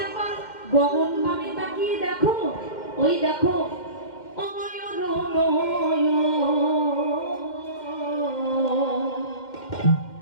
একবার গগন পানে তাকিয়ে দেখো। ওই দেখো, অময় অরুণয়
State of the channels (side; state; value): right; late; 2.1 ms